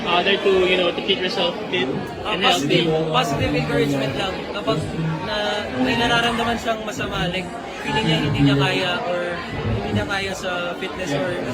other to, to keep yourself fit and healthy? Positive encouragement lang. Kapag may nararamdaman siyang masama, like feeling niya hindi niya kaya or hindi niya kaya sa fitness or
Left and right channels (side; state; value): both; identical; correlation 1.00